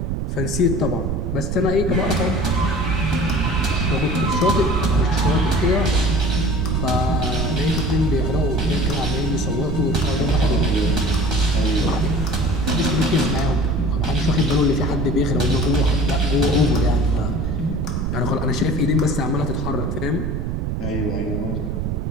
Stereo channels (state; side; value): noise; right; rumble, 2 dB below the sound